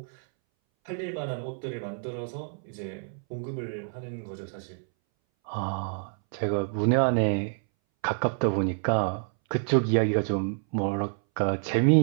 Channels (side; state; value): left; silent; 59 dB below the other